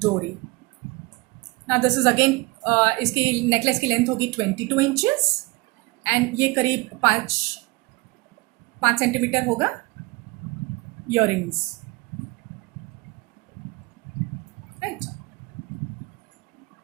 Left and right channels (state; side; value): quieter; left; 23.1 dB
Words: Now this is again इसकी नेकलेस की लेंथ होगी 22 inches, and ये करीब 5 सेंटीमीटर होगा earrings. Right.